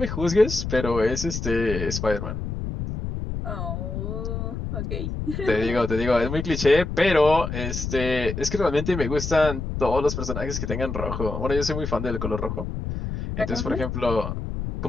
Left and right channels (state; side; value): noise; left; rumble, 5 dB below the sound